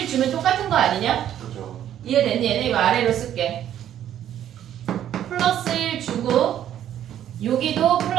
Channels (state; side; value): quieter; left; 10.9 dB